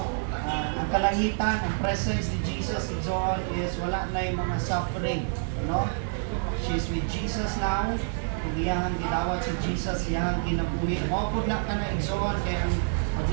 Ang kalangitan, ang presence ni Jesus and so on is wala na yung mga suffering, no? She's with Jesus now. Kung iyang gidawat si Jesus, iyang kinabuhi. Mapod na ka na igsoon, kaya ang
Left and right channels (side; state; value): left; silent; digital silence